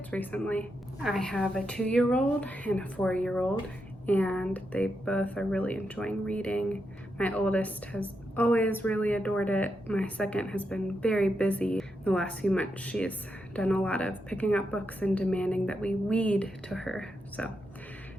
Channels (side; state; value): both; normal; correlation 0.84